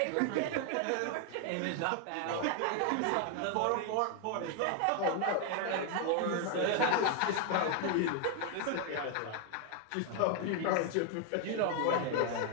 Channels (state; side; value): different; both; correlation 0.00